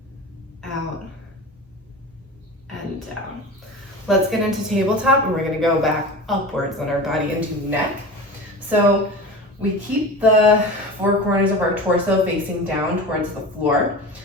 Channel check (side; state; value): both; normal; correlation 0.32